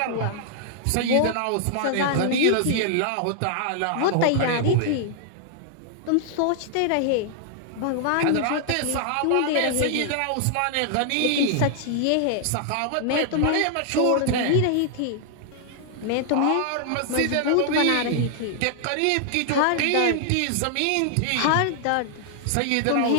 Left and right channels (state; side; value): different; both; correlation 0.00